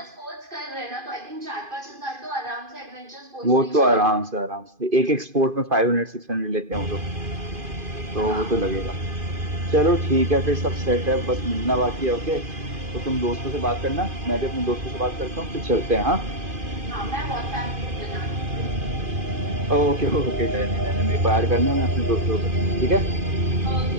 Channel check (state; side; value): late; left; 2.5 ms